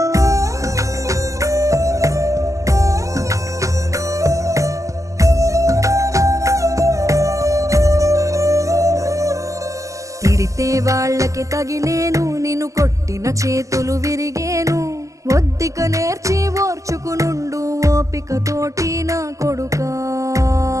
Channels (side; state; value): left; late; 0.16 ms